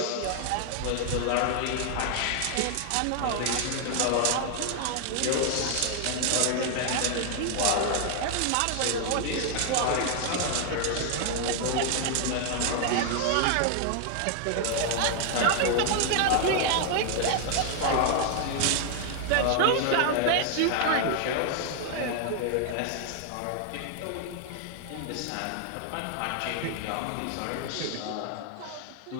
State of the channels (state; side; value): different; both; correlation 0.00